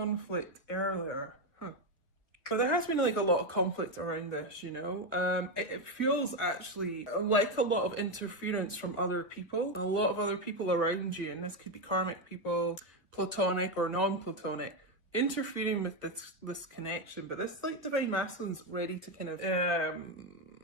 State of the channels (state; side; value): late; right; 1.4 ms